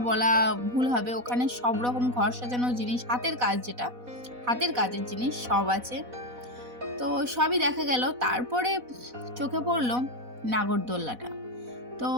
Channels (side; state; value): left; late; 4.1 ms